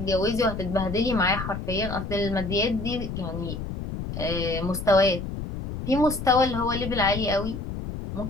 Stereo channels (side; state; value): left; noise; rumble, 6 dB below the sound